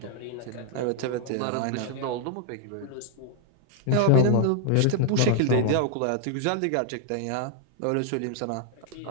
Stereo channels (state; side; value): different; both; correlation 0.00